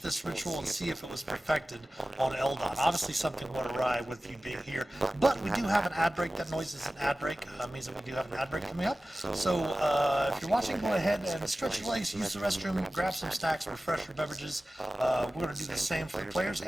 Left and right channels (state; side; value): normal; both; correlation 0.96